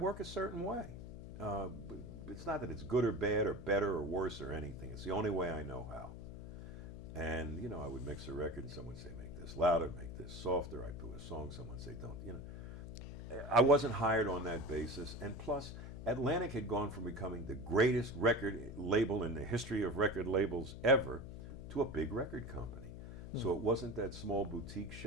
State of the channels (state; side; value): noise; left; hum, 11 dB below the sound